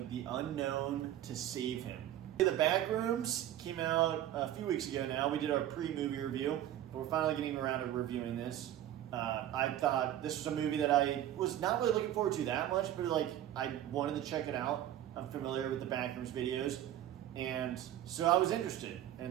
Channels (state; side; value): quieter; left; 12.1 dB